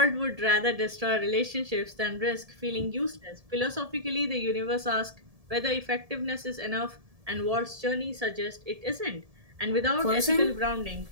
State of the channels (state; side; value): late; left; 1.7 ms